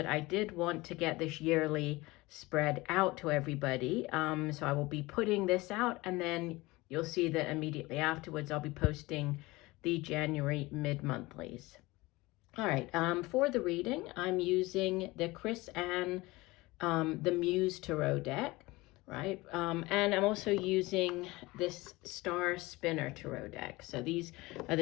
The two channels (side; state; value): right; quieter; 21.4 dB